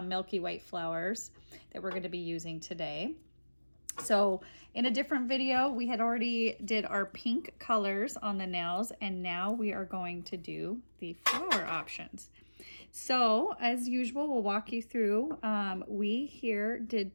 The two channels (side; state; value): both; inverted; correlation -1.00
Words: Milky White flowers that we're going to be using today. So in a different video, we had already did our pink colors on the nails, and now we are going to do the flower options. So as usual, we'll walk you through. We here did